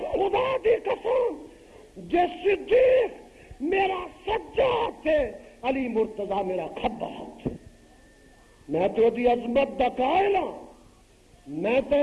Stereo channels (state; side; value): identical; both; correlation 1.00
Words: خدا دی قسم جے صدیق میرا سجا ہاتھ ہے علی مرتضیٰ میرا کھبا ہاتھ ہے میں تو دی عظمت دا قائل ہوں میں